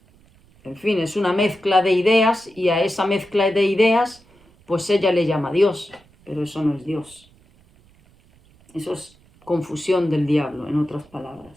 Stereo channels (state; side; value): noise; right; rumble, 30 dB below the sound